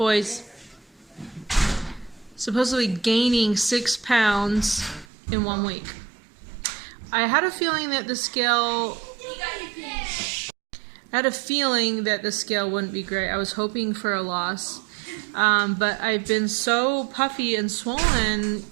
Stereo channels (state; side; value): drops out; left; at 5.1 s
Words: supposedly gaining 6 pounds in 1 week. I had a feeling that the scale wouldn't be great. I was hoping for a loss. But I've been so puffy and swollen